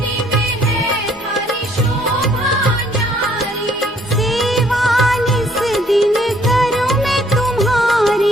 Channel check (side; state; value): both; normal; correlation 0.63